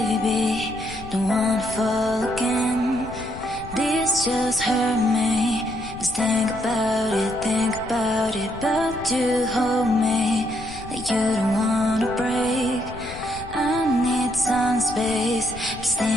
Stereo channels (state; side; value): noise; left; rumble, 14 dB below the sound